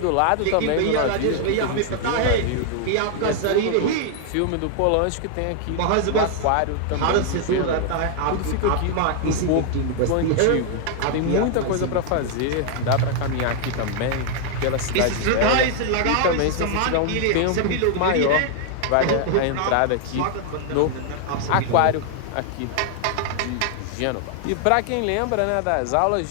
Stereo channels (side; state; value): both; different; correlation 0.00